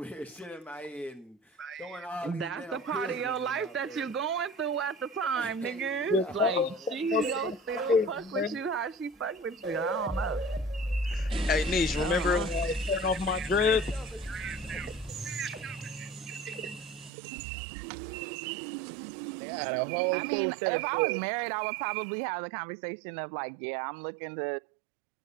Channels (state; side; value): drops out; left; at 17.1 s